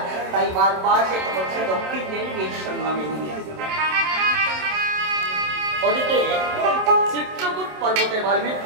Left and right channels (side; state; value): left; late; 27 ms